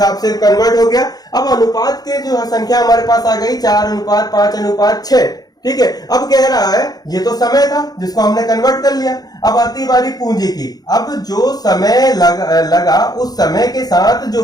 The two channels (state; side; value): late; right; 0.19 ms